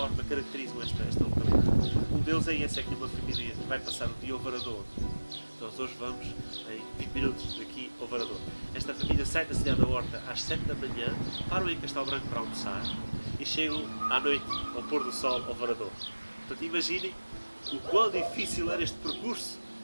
caracterizam esta localidade. Um deles é esse, é que uma família vai passar o dia ao Varador. Nós hoje vamos em 20 minutos daqui ao Varador. Esta família sai da cidade da Horta às 7 da manhã, param em Castelo Branco para almoçar e chegam à noite, ao pôr do sol, ao Varador. Portanto, imaginem o quão difícil era este percurso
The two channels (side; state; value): both; inverted; correlation -1.00